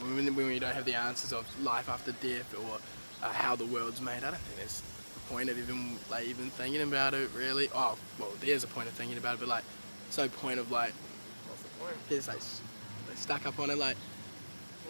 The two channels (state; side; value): inverted; both; correlation -1.00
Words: when we don't have the answers of life after death or how the world's made, I don't think there's a point of even thinking about it really. Oh, well, there's a point of thinking about it, but like, there's no point of like, there's like stuck up on it. Like,